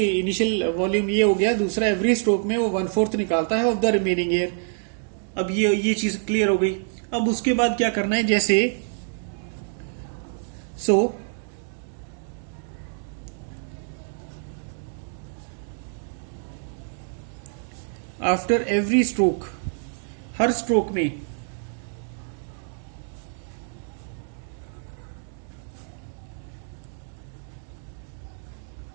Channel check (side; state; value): left; silent; digital silence